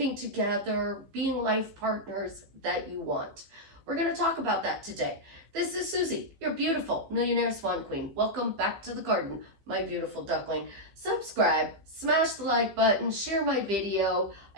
together, being life partners that you want? We're going to talk about that today. This is Susie, your beautiful millionaire swan queen. Welcome back to the garden, my beautiful duckling. Subscribe, smash the like button, share my video.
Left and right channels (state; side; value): late; left; 15 ms